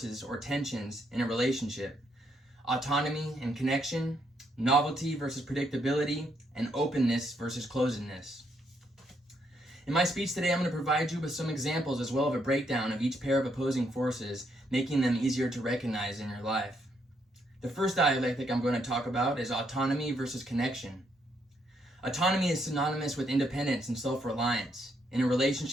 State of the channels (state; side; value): normal; both; correlation 0.75